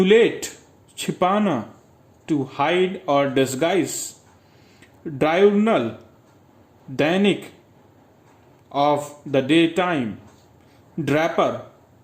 छिपाना, to hide or disguise, diurnal, Dainik, of the daytime, draper,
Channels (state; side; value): identical; both; correlation 1.00